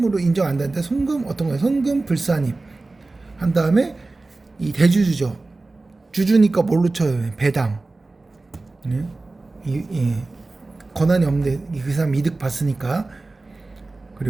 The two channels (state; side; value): quieter; left; 3.3 dB